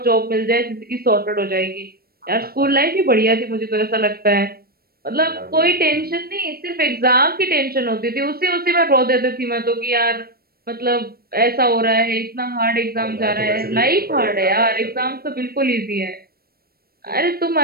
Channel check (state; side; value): late; left; 0.44 ms